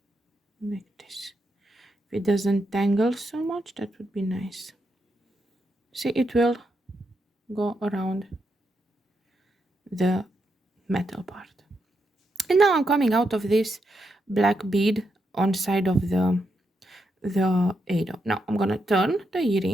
like this. If it doesn't tangle so much, that would be nice. See, it will go around the metal part. And now I'm coming out of this black bead on side of the ado. Now I'm gonna turn the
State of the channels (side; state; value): both; normal; correlation 0.82